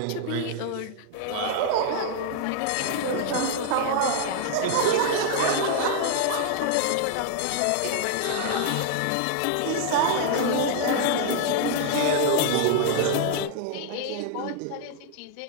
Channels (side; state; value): both; different; correlation 0.00